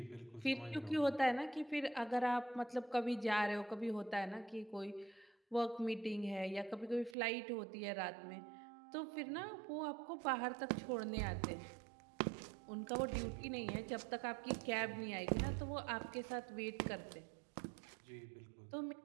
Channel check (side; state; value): left; drops out; at 7.2 s